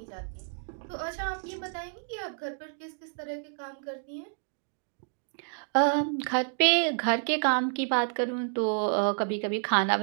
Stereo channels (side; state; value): left; silent; digital silence